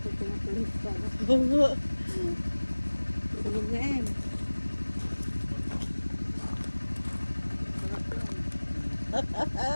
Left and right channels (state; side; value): inverted; both; correlation -1.00